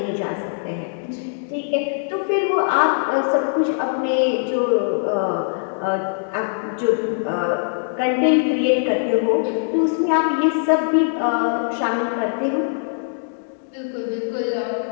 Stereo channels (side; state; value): right; silent; digital silence